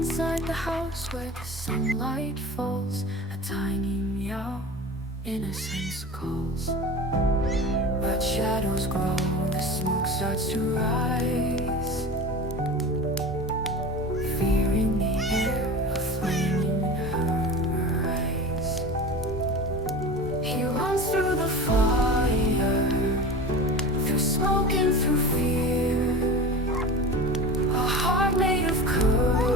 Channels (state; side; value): normal; both; correlation 0.32